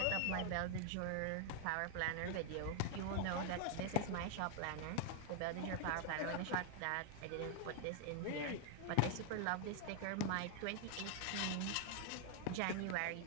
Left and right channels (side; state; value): both; different; correlation 0.00